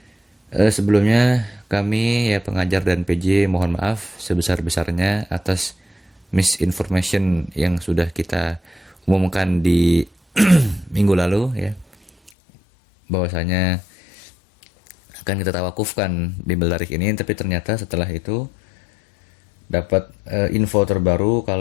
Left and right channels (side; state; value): right; drops out; at 12.3 s